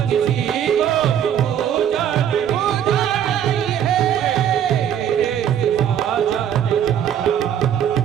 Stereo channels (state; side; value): quieter; left; 9.5 dB